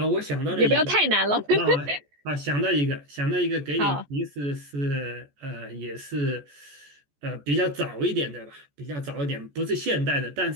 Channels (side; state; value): left; late; 14 ms